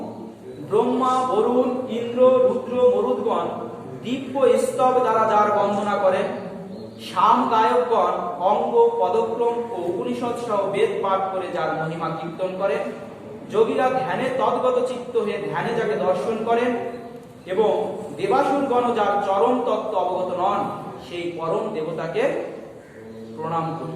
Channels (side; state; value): both; identical; correlation 1.00